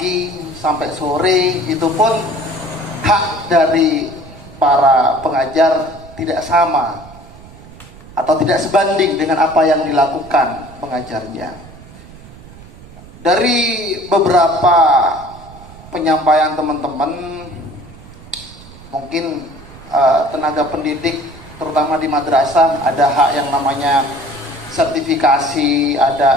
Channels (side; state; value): right; noise; rumble, 19 dB below the sound